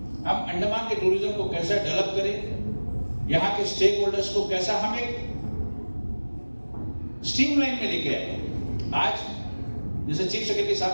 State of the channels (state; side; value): inverted; both; correlation -1.00